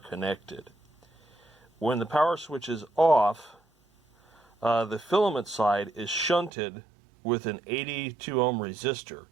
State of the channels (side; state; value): left; drops out; at 6.5 s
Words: When the power switch is off, the filament side is shunted with an 82 ohm resistor.